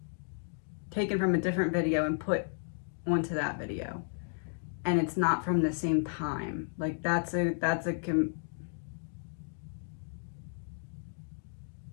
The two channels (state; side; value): silent; right; digital silence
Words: taken from a different video and put onto that video. And it's not from the same time. Like how do